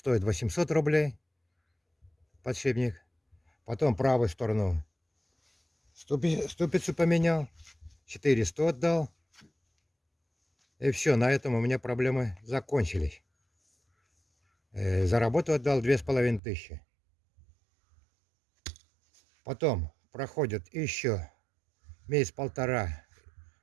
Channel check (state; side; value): drops out; left; at 16.4 s